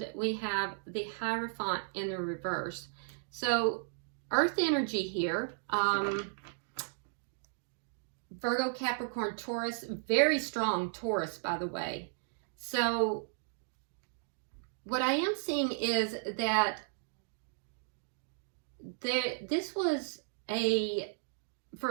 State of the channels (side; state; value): left; silent; digital silence